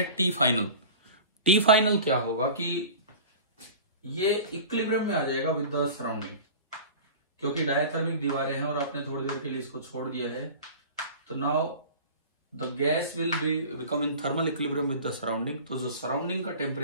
T फाइनल। T फाइनल क्या होगा कि ये इक्विलिब्रियम में आ जाएगा विद द सराउंडिंग, क्योंकि डायथर्मिक दीवारें हैं और आपने थोड़ी देर के लिए इसको छोड़ दिया है। तो now the gas will become in thermal equilibrium with the surrounding. तो जो सराउंडिंग का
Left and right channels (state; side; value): inverted; both; correlation -0.38